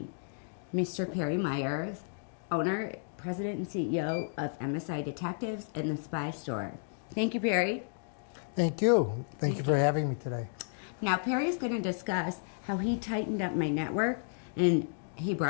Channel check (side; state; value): right; silent; digital silence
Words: Mr. Perry Myers, owner, president, and CEO of MSI Detectives and the Spy Store. Thank you, Perry. Thank you. Thank you for having me today. Now, Perry is going to discuss how he tightened up my network and he